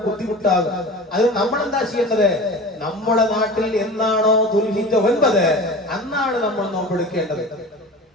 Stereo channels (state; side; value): normal; both; correlation 0.35